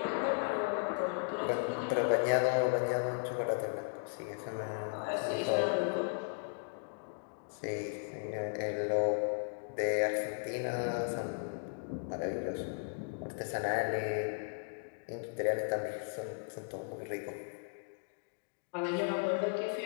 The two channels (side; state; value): right; silent; digital silence